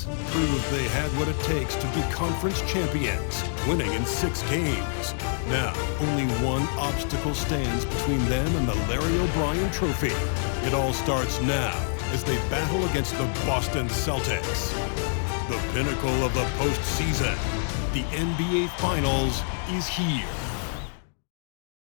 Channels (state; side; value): silent; right; digital silence